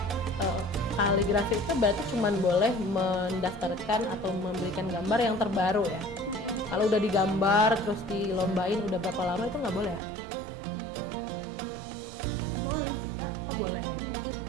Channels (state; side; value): drops out; left; at 10.0 s